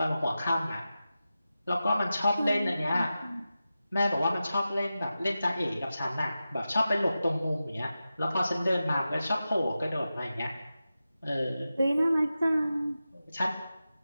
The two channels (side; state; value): both; inverted; correlation -0.93